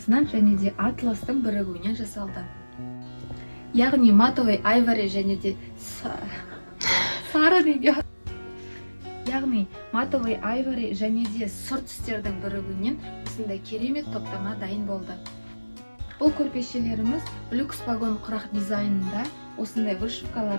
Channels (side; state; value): both; inverted; correlation -1.00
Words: және де атластың бірігуінен жасалды. Яғни матовый айвори және де сары неге. Яғни матовый айвори және де сұр түстердің бірігуінен осындай керемет топтама дайын болды. Бұл көрпешелеріміз люкс вагон құрақ дизайнында осындай